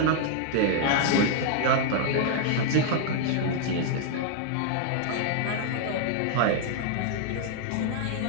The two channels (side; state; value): both; different; correlation -0.01